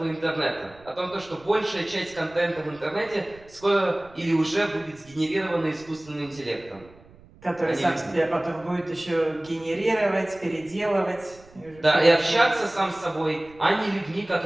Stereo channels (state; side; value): noise; right; rumble, 25 dB below the sound